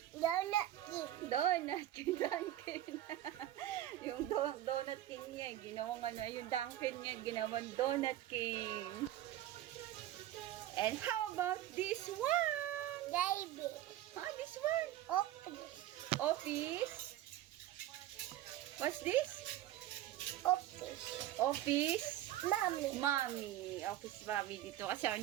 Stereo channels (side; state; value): left; quieter; 13.4 dB